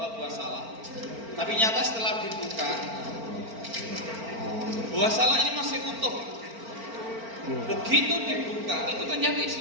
buah salak. Tapi nyata setelah dibuka, buah salak ini masih utuh. Begitu dibuka, itu ternyata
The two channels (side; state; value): left; late; 4.4 ms